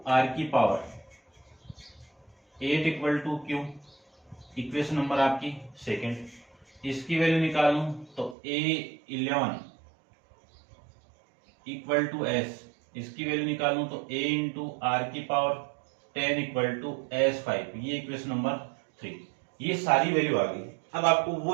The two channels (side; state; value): left; drops out; at 8.3 s